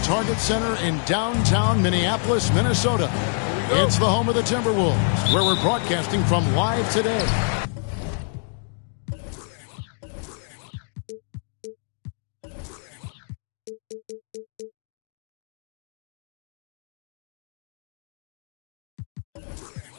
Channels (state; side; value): silent; right; 61 dB below the other